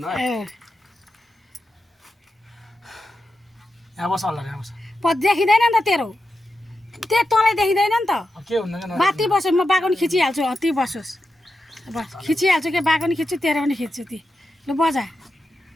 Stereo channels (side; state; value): both; normal; correlation 0.89